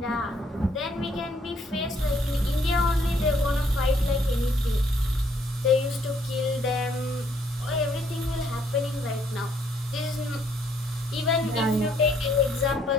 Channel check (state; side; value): normal; both; correlation 0.68